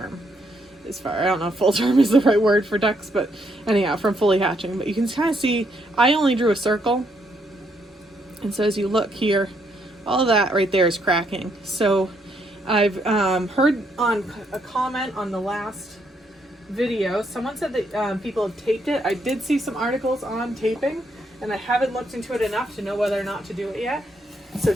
I don't know if full term is the right word for ducks, but anyhow, from fully hatching. But you can kind of see, I only drew a circle. And so as you look here, all of that right there is cracking. So I've heard on a comment on the last video, someone said that people have taped it. I did see some articles on taping, and I haven't looked into it enough to know whether or not to do it yet. So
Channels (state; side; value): normal; both; correlation 0.74